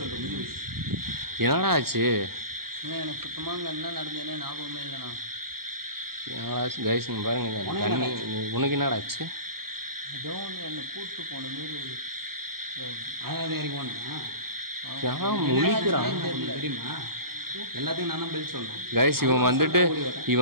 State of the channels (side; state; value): left; late; 0.94 ms